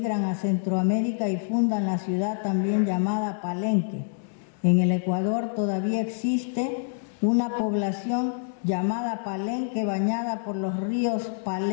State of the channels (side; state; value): right; silent; digital silence